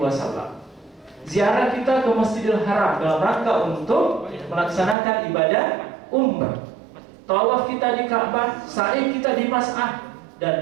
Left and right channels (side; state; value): left; drops out; at 5.0 s